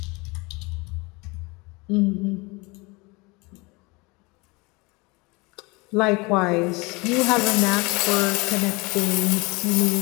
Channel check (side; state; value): right; quieter; 26.2 dB